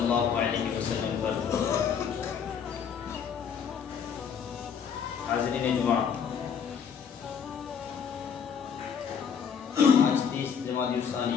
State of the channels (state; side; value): quieter; right; 7.2 dB